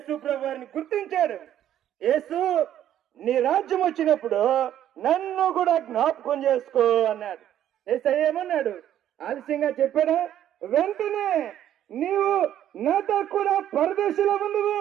ప్రభువారిని గుర్తించాడు. యేసు, నీ రాజ్యం వచ్చినప్పుడు నన్ను కూడా జ్ఞాపకం చేసుకో అన్నాడు. యేసయ్య ఏమన్నాడు? ఆలస్యంగా చెప్పాడా? వెంటనే నీవు నాతో కూడా పరదేశంలో ఉండవు.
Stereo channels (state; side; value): quieter; left; 11.2 dB